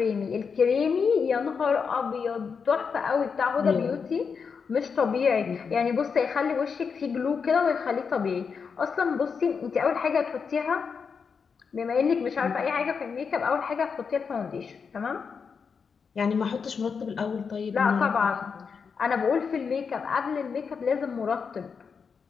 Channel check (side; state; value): right; quieter; 5.8 dB